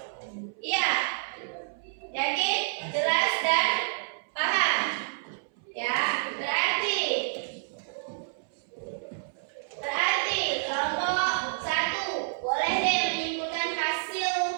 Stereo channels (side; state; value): left; silent; 59 dB below the other